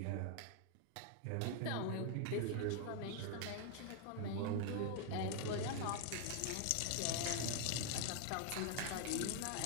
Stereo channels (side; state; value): both; different; correlation 0.00